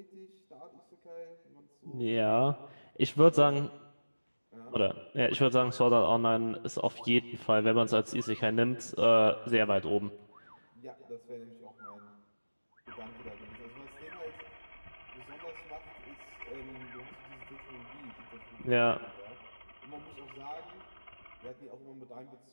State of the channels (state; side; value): inverted; both; correlation -1.00